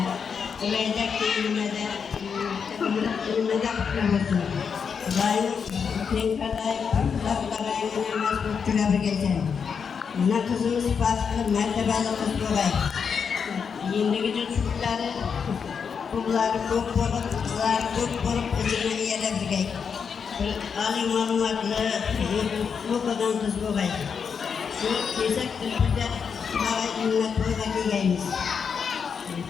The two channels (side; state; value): right; quieter; 6.4 dB